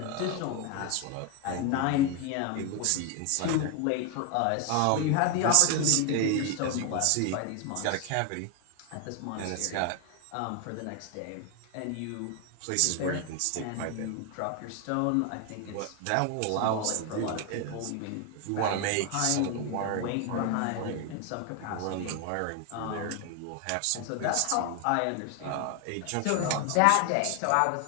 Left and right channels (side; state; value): both; different; correlation 0.01